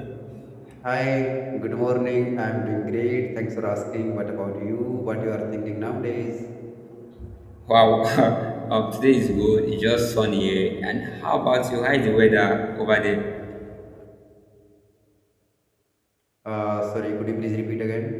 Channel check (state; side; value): identical; both; correlation 1.00